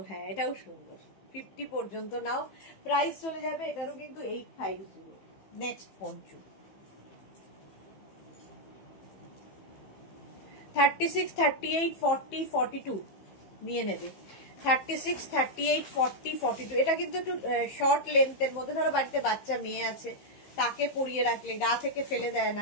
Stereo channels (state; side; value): late; right; 15 ms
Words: হ্যাঁ, এটাও সুন্দর। 50 পর্যন্ত নাও, প্রাইস চলে যাবে এটারও কিন্তু 850। নেক্সট পঞ্চু 36, 38, 40, 42 নিয়ে নেবে। 36, 38, 40, 42 এটা কিন্তু একটু শর্ট লেন্থের মধ্যে। ধরো বাড়িতে বাচ্চা মেয়ে আছে, তাকে পরিয়ে রাখলে গা থেকে ফেলে দেয়